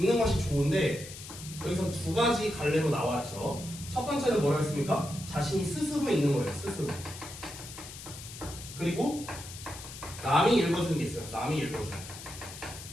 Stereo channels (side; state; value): left; noise; hiss, 13 dB below the sound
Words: 것이 좋은데 여기서 두 가지 갈래로 나왔죠. 첫 번째는 뭐라고 했습니까? 자신이 스스로 읽는 거예요. 스스로. 그리고 남이 읽어주는 게 있어요. 남이 읽어주는 거.